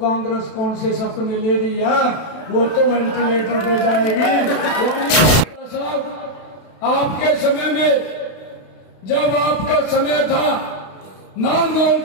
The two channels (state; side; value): late; right; 32 ms